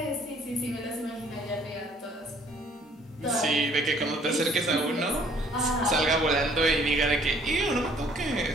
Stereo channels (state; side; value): normal; both; correlation 0.60